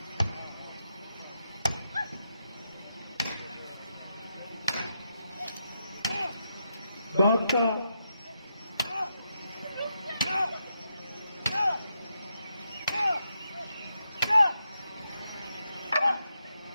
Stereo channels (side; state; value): both; inverted; correlation -0.83